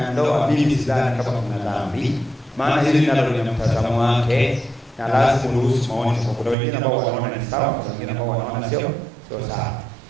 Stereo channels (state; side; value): drops out; left; at 6.6 s